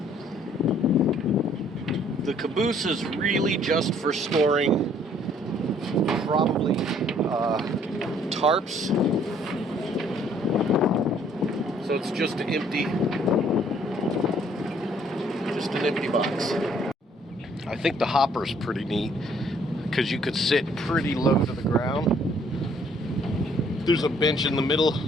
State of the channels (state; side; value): normal; both; correlation 0.62